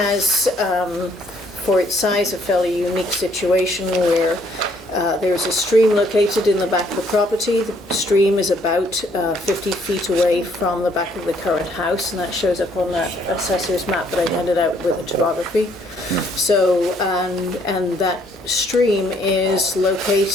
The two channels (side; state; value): both; normal; correlation 0.66